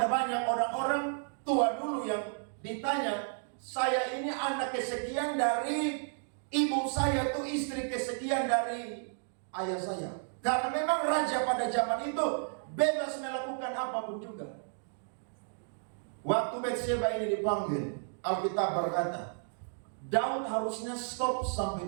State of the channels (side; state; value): left; silent; digital silence